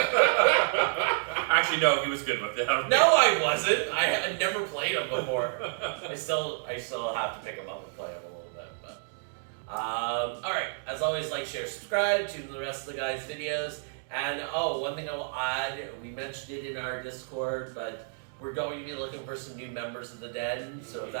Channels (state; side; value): silent; left; digital silence